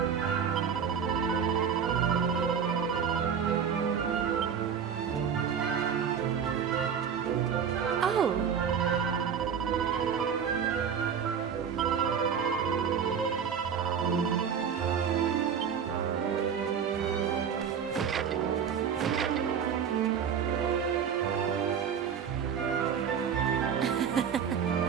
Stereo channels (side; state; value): left; quieter; 7.5 dB